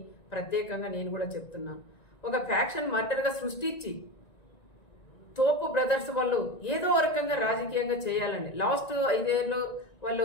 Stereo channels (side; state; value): right; late; 1.9 ms